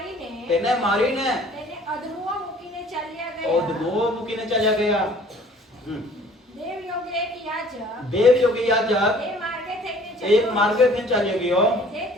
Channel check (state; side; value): normal; both; correlation 0.53